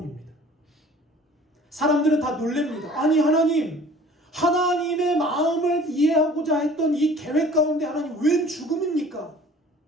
사람들은 다 놀랍니다. 아니 하나님, 하나님의 마음을 이해하고자 했던 이 계획 가운데 하나님 웬 죽음입니까?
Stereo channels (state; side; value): normal; both; correlation 0.49